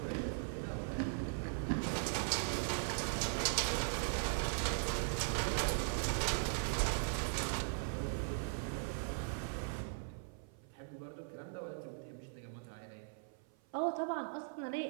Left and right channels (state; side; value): silent; left; 51 dB below the other